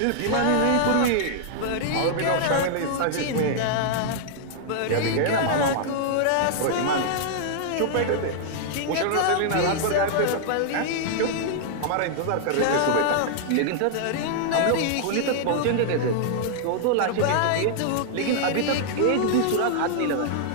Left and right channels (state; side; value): different; both; correlation -0.01